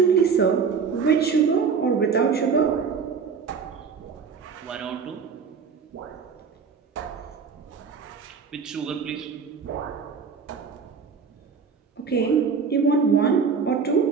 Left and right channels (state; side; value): quieter; left; 5.8 dB